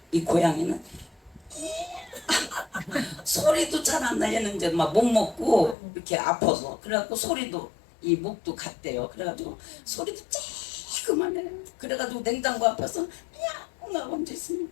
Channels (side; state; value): right; drops out; at 5.8 s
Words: 이 고양이는 소리도 잘 안 나. 얘는 이제 막 못 먹고 이렇게 아파서. 그래갖고 소리도 이 목도 갔대요. 그래가지고 소리도 쬐그만해. 그래가지고 냉장고 앞에서 야 언제 있으면